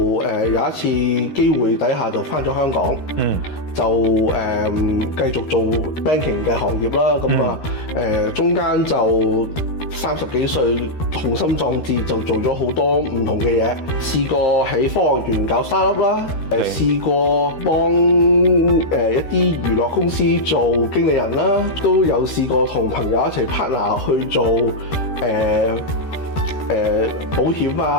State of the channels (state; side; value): late; right; 13 ms